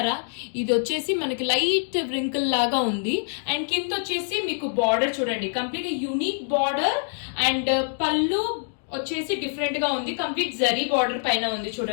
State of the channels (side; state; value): right; silent; digital silence